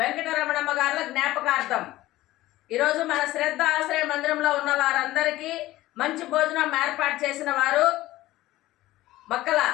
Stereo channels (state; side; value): quieter; right; 16.6 dB